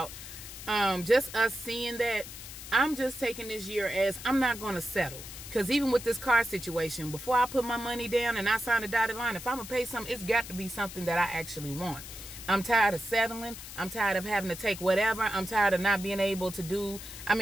just us seeing that, I'm just taking this year as I'm not going to settle. Because even with this car situation, before I put my money down and I sign a dotted line, if I'm going to pay something, it's got to be something that I actually want. I'm tired of settling. I'm tired of having to take whatever. I'm tired of not being able to do. I'm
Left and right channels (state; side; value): noise; left; hiss, 12 dB below the sound